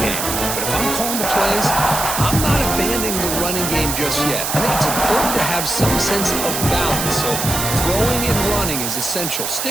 But if I'm calling the plays, I'm not abandoning the running game just yet. I think it's important to have some sense of balance. So throwing and running is essential.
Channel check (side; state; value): right; noise; hiss, 2 dB below the sound